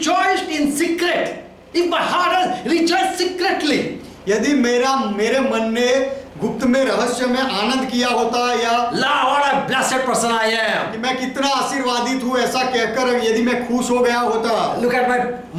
in secret. If my heart has rejoiced secretly. यदि मेरे मन ने गुप्त में रहस्य में आनंद किया होता, या What a blessed person I am. कि मैं कितना आशीर्वादित हूँ ऐसा कहकर यदि मैं खुश हो गया होता। Look at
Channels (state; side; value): identical; both; correlation 1.00